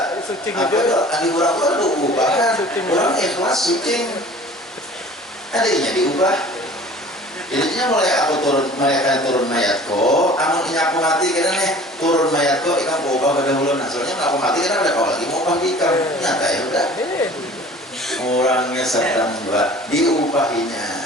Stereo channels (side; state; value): both; normal; correlation 0.46